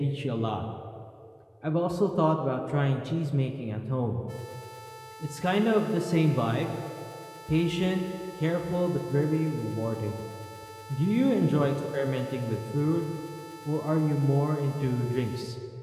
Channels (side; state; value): both; identical; correlation 1.00